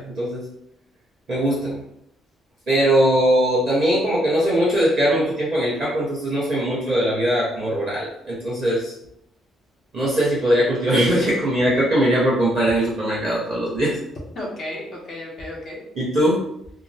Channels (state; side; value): normal; both; correlation 0.73